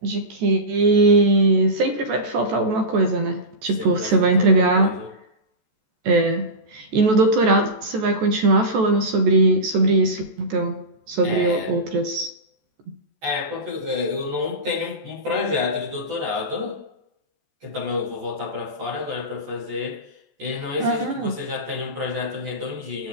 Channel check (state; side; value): late; left; 14 ms